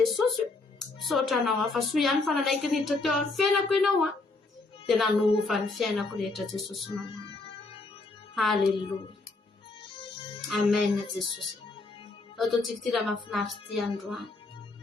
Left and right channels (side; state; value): right; quieter; 3.4 dB